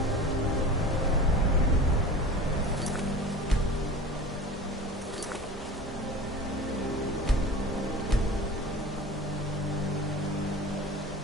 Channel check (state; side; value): normal; both; correlation 0.36